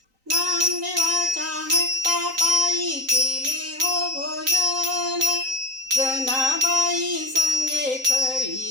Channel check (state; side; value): late; left; 3.9 ms